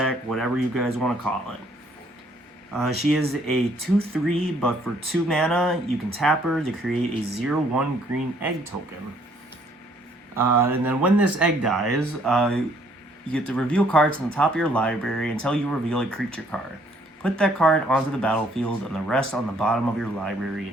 whatever you guys want to call it. She is a 2/3, but for 2 mana, you can tap her to create a 0/1 green egg token. And then when this egg dies, you get to reveal cards on the top of your library until you reveal a creature card. Put that card onto the battlefield and the rest on the bottom of your library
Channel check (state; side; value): normal; both; correlation 0.64